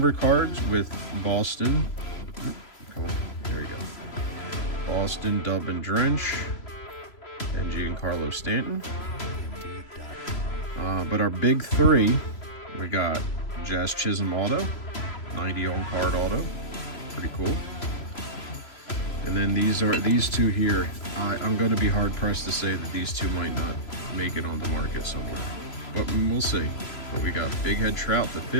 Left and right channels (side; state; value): right; late; 3.0 ms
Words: cards with Boston. Come on, there we go. Boston, Dub and Drench, and Giancarlo Stanton. But our big 3, we got Jazz Chisholm auto, 90 on card auto, pretty cool. And then these 2 here. I'm going to be hard pressed to say that these 2 might not make it on the market somewhere, but we'll see. But we got Big Head Trout to